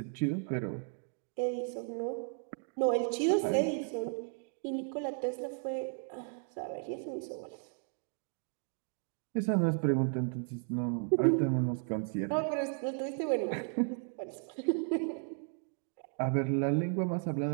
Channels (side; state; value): left; silent; 55 dB below the other